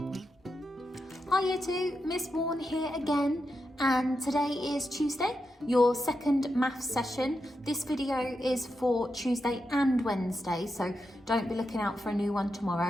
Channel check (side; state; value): both; normal; correlation 0.86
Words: Year 2, Miss Warren here again, and today is Tuesday, your second maths session. This video is for Tuesday and Wednesday, so don't be looking out for a new one